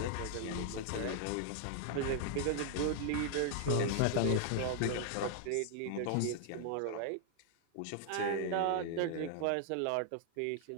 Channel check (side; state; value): both; different; correlation 0.00